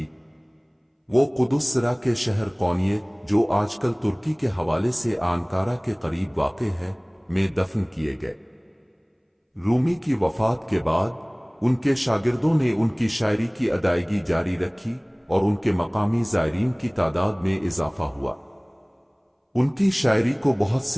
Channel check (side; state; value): both; identical; correlation 1.00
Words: وہ قدس سرا کے شہر قونیہ، جو آج کل ترکی کے حوالے سے آنکارا کے قریب واقع ہے، میں دفن کیے گئے۔ رومی کی وفات کے بعد ان کے شاگردوں نے ان کی شاعری کی ادائیگی جاری رکھی اور ان کے مقامی زائرین کی تعداد میں اضافہ ہوا۔ ان کی شاعری کو بہت